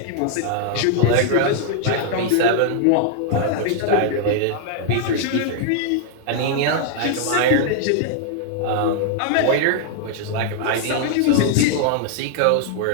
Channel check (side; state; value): both; different; correlation 0.00